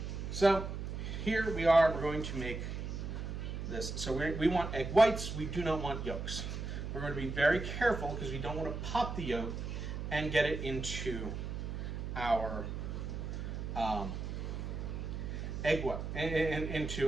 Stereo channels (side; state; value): right; noise; hum, 5 dB below the sound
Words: So here we are. We're going to make this. So we want egg whites. We do not want yolks. We're going to be very careful because we don't want to pop the yolk and get it into our egg white